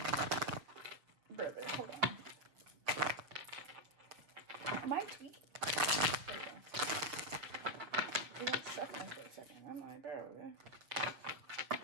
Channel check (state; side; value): late; left; 6.8 ms